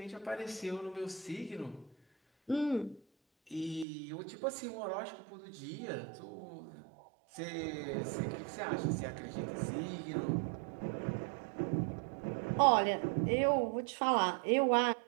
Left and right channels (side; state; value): left; drops out; at 3.9 s